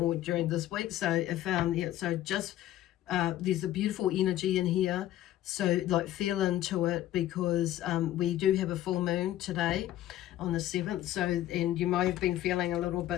during this week. So if so just there's a beautiful energy in here, so like feel into it, because we do have a full moon today on the 7th. So, and you may have been feeling a little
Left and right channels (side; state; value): right; quieter; 13.5 dB